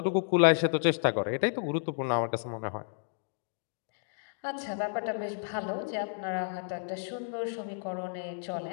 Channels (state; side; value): silent; right; digital silence